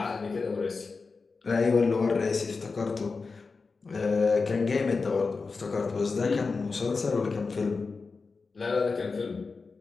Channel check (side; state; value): right; quieter; 4.4 dB